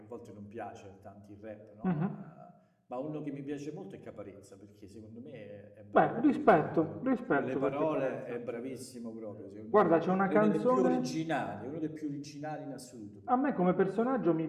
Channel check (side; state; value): both; identical; correlation 1.00